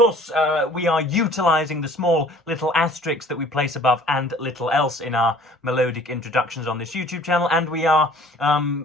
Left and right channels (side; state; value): both; normal; correlation 0.52